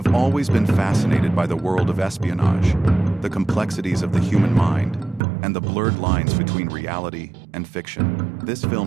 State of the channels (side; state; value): left; drops out; at 5.2 s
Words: always been fascinated by the world of espionage, the complexities of the human mind, and the blurred lines between reality and fiction. This